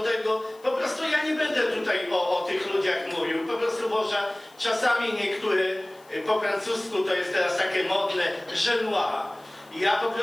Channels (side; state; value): left; noise; hiss, 29 dB below the sound